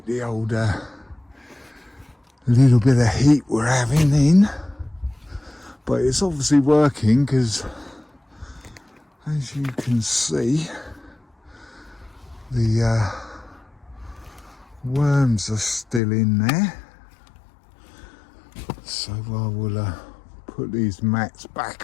the old little bit of heat we're having in. But it's obviously working, because as you can see, the worms are still in there. So I will put these mats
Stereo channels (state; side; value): drops out; right; at 16.0 s